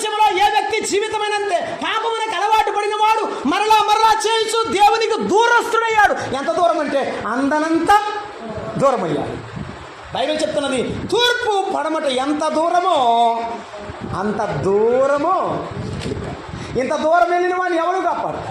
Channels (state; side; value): identical; both; correlation 1.00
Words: ఏ వ్యక్తి జీవితమైనంతే పాపమునకు అలవాటు పడిన వాడు మరలా చేయొచ్చు దేవునికి దూరస్తుడయ్యాడు. ఎంత దూరం అంటే అందనంత దూరం అయ్యాడు. బైబిల్ చెప్తున్నది, తూర్పు పడమట ఎంత దూరమో అంత దూరమో. ఇంత దూరం వెళ్ళిన వాడిని ఎవరు